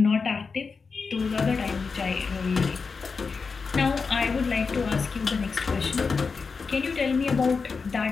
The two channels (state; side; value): quieter; right; 4.9 dB